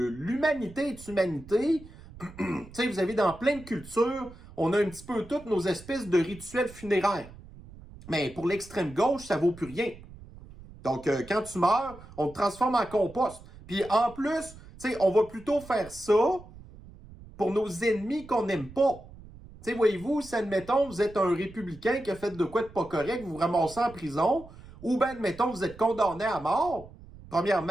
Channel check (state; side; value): noise; right; rumble, 19 dB below the sound